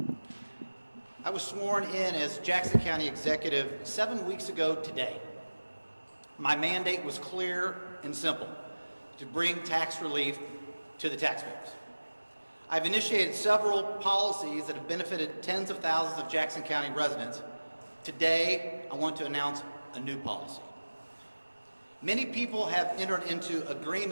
I was sworn in as Jackson County Executive 7 weeks ago today. My mandate was clear and simple: to bring tax relief to the taxpayers. I've initiated several policies that have benefited tens of thousands of Jackson County residents. Today, I want to announce a new policy. Many people have entered into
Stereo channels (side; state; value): both; inverted; correlation -1.00